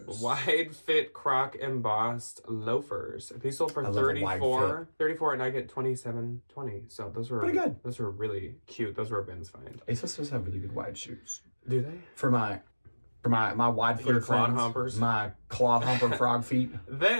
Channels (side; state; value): both; inverted; correlation -1.00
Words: Wide fit croc embossed loafers. These sold for I love a wide $34. $34 and I get $27.20. So those were pretty good. Those were really cute. Those were a bins find. ASOS does have really good wide shoes. Do they? For my wide footed clod friends, humpers. my cloth humper frog feet.